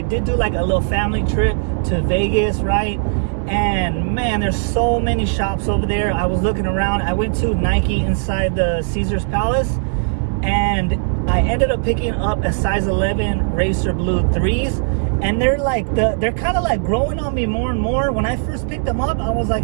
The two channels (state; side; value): silent; left; digital silence